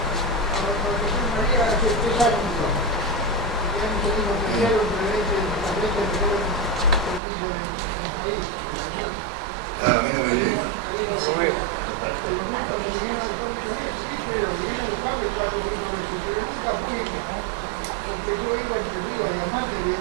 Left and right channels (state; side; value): drops out; left; at 7.2 s